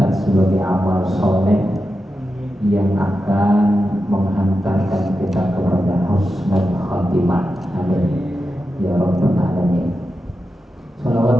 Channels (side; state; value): both; normal; correlation 0.90